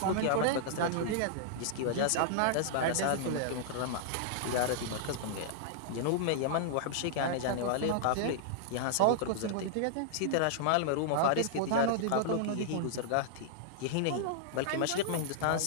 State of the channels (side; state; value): both; different; correlation -0.01